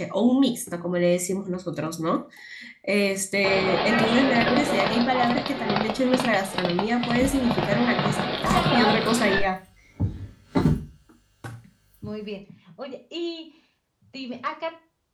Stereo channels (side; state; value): both; identical; correlation 1.00